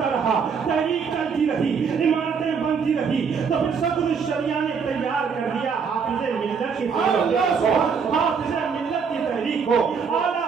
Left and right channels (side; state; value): left; quieter; 6.0 dB